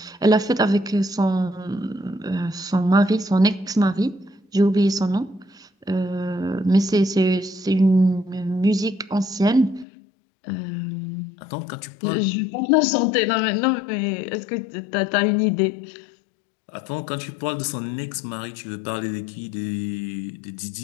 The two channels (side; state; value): right; drops out; at 9.9 s